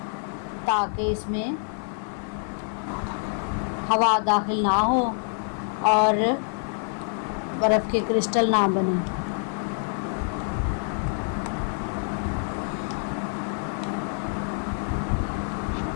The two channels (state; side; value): silent; right; 56 dB below the other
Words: ताकि इसमें हवा दाखिल ना हो और बर्फ़ के क्रिस्टल ना बने।